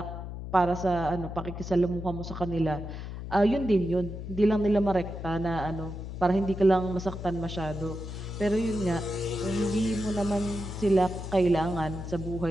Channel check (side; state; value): left; noise; hum, 8 dB below the sound